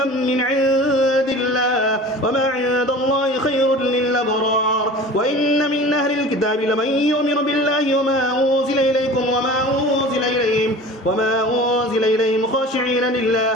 من عند الله وما عند الله خير للأبرار وإن من أهل الكتاب لمن يؤمن بالله وما أنزل إليكم وما أنزل إليهم خاشعين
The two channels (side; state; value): both; normal; correlation 0.39